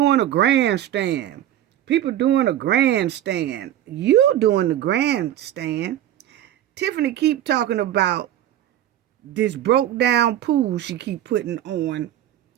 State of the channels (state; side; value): quieter; left; 12.1 dB